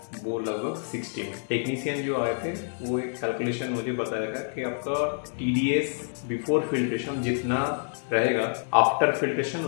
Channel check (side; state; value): right; silent; 59 dB below the other